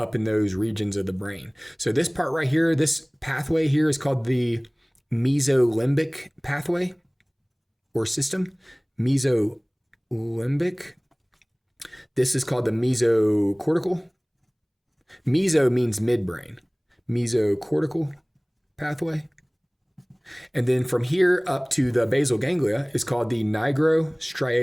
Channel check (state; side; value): identical; both; correlation 1.00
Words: in those regions of the brain. So this part right here, this pathway here is called the mesolimbic pathway or system. Mesolimbic. This is called the mesocortical. Meso means midbrain. Mesocortical pathway. And then from here up to the basal ganglia is called the